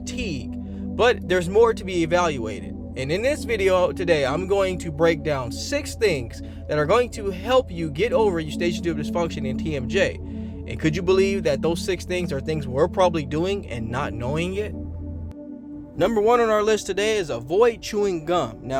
but there's more to be evaluated. And in this video today, I'm going to break down 6 things that are going to help you get over eustachian tube dysfunction and TMJ. And could you believe that those 6 things are things we're probably doing and not knowing it? Number 1 on our list today is avoid chewing gum.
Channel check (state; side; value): identical; both; correlation 1.00